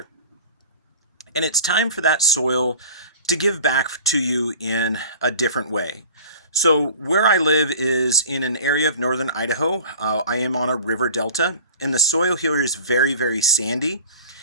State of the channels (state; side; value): inverted; both; correlation -0.41